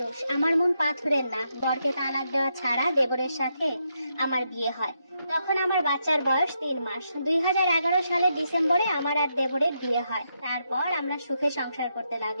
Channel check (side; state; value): both; inverted; correlation -0.81